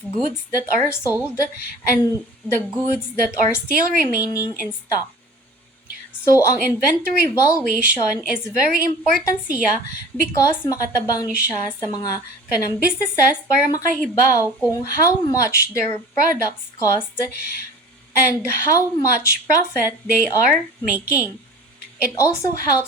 goods that are sold and the goods that are still remaining in stock. So, ang inventory valuation is very important siya because makatabang ni siya sa mga kanang businesses para makahibaw kung how much their products cost and how much profit they are making. It also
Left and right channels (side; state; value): both; normal; correlation 0.42